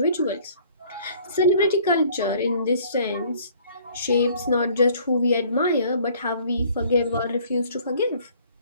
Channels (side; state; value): both; inverted; correlation -0.56